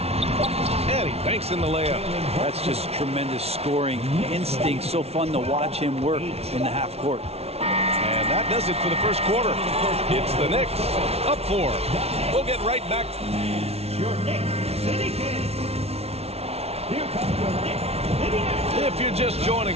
And he banks in the layup. That's just tremendous scoring instinct. So fun to watch him work in the half court. And that does it for the first quarter. It's the Knicks up 4. We'll get right back. Your Knicks City Kings. Here comes your Knicks City Kings. If you're just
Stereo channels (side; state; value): left; late; 0.30 ms